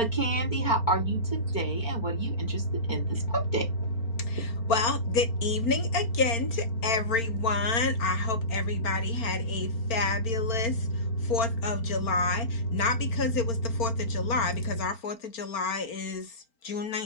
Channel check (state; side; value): late; right; 4.4 ms